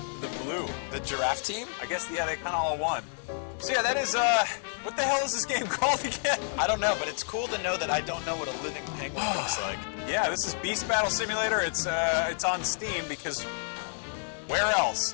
blue. The giraffe team? I guess yeah, they kind of all won. So yeah, that is what the hell is this game called again? I don't know, but it's cool to know that I don't know what a living penguin looks like. Yeah, this is Beast Battle Simulator. It's on Steam because where else?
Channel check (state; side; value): silent; right; digital silence